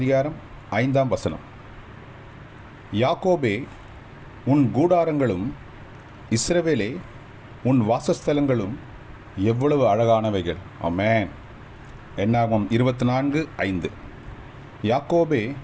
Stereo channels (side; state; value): both; identical; correlation 1.00